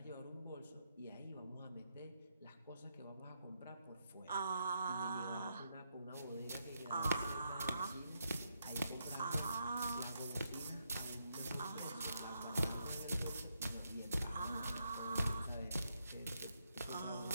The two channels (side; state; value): both; inverted; correlation -0.80